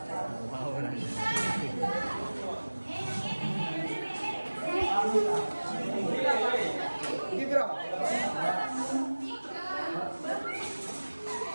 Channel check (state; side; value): inverted; both; correlation -1.00